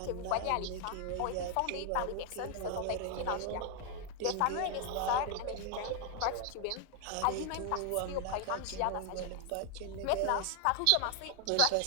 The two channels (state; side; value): different; both; correlation 0.00